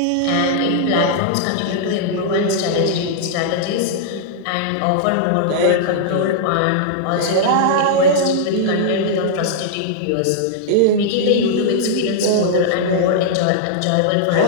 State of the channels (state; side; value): different; both; correlation -0.01